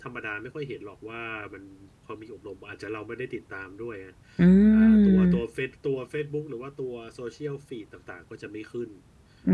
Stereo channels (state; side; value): identical; both; correlation 1.00